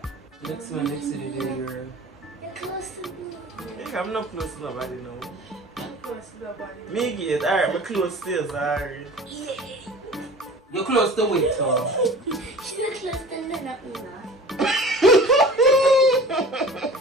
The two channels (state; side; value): normal; both; correlation 0.41